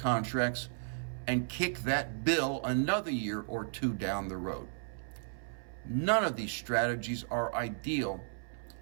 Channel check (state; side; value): silent; left; 55 dB below the other